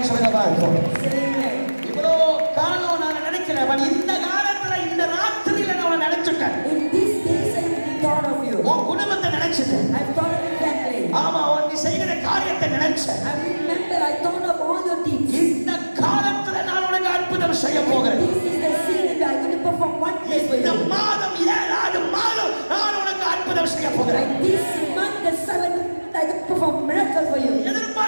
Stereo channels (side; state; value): both; inverted; correlation -1.00